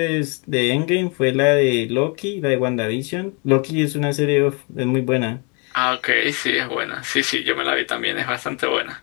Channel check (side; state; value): right; quieter; 33.0 dB